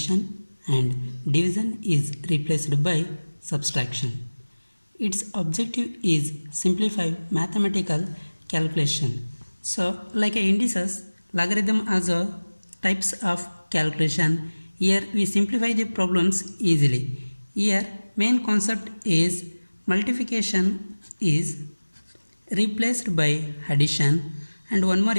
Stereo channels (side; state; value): both; inverted; correlation -1.00